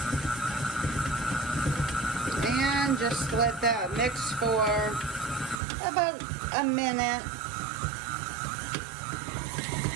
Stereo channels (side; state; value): left; drops out; at 5.6 s